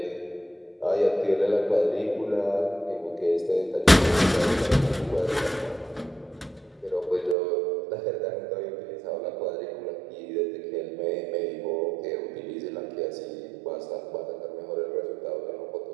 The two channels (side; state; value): left; drops out; at 7.4 s